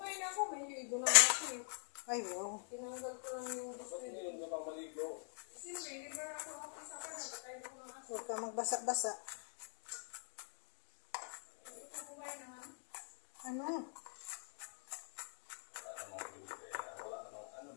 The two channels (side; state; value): right; silent; digital silence